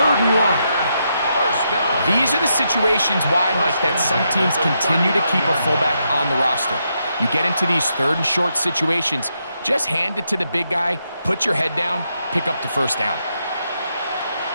and 1. These are the situations why, Mike, that some teams continue to keep a fullback on the roster. You get into these 3rd and short situations, just hand it to the big guy, put your head down, pick up the first down.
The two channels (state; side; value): inverted; both; correlation -0.81